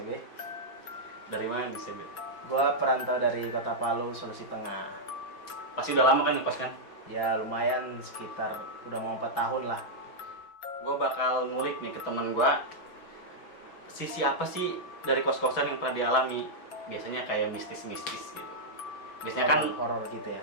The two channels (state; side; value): late; right; 6.0 ms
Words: Dari mana nih Sebe? Gue perantau dari Kota Palu, Sulawesi Tengah. Pasti udah lama kan ngekos kan? Ya lumayan, sekitar udah mau 4 tahun lah. Gue bakal ngulik nih ke temen gue, sisi apa sih dari kos-kosan yang pernah dialami. Biasanya kayak mistis-mistis gitu. Biasanya kan horor gitu ya.